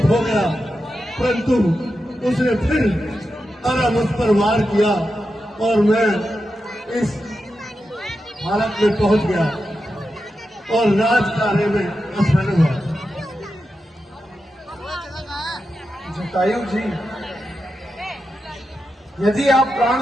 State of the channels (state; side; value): normal; both; correlation 0.89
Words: हो गया, परंतु उसने फिर आरा मुझ पर वार किया और मैं इस हालत में पहुंच गया और राज कार्य में असफल हुआ। जटायु जी, यदि आप प्राण